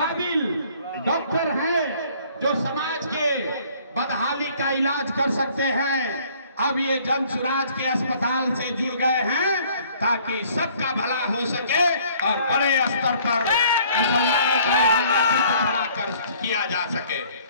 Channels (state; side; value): inverted; both; correlation -0.58